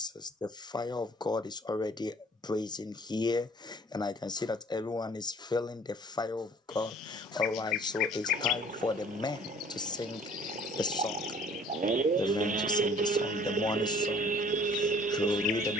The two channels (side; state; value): both; normal; correlation 0.52